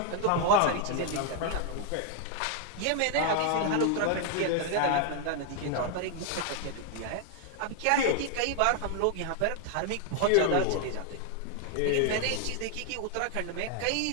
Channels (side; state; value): both; different; correlation 0.00